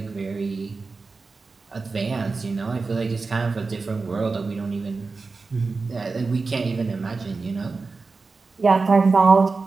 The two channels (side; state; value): left; quieter; 4.1 dB